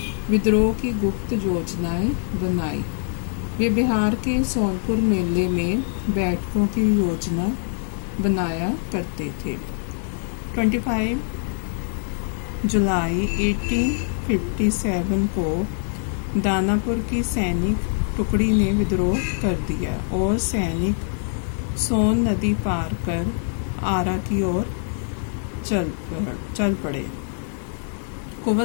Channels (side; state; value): right; silent; digital silence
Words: विद्रोह की गुप्त योजनाएं बनाई। वे बिहार के सोनपुर मेले में बैठकों की योजना बनाया करते थे। 25 जुलाई 1857 को दानापुर की सैनिक टुकड़ी ने विद्रोह कर दिया और सैनिक सोन नदी पार कर आरा की ओर चल पड़े।